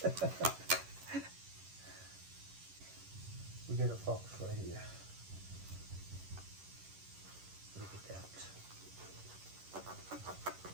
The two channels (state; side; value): late; left; 11 ms